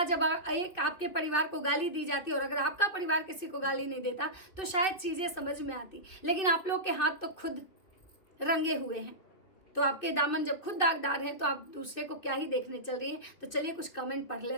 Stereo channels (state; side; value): late; right; 2.8 ms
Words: जब एक आपके परिवार को गाली दी जाती है, और अगर आपका परिवार किसी को गाली नहीं देता तो शायद चीज़ें समझ में आती। लेकिन आप लोग के हाथ तो खुद रंगे हुए हैं, तो आपके दामन जब खुद दागदार हैं तो आप दूसरे को क्या ही देखने चल रही हैं। तो चलिए कुछ कमेंट पढ़